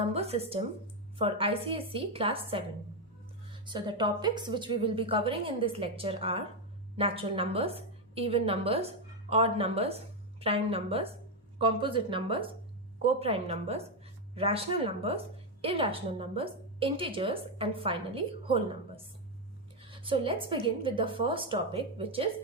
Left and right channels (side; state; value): both; normal; correlation 0.05